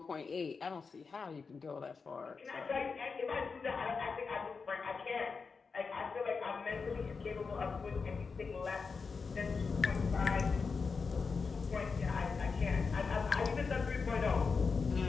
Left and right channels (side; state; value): right; quieter; 5.0 dB